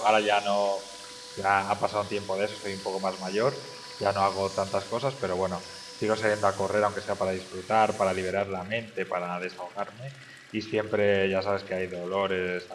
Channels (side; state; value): both; identical; correlation 1.00